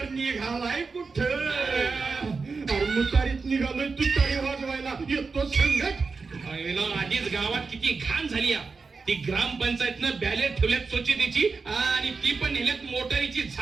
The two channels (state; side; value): quieter; left; 4.5 dB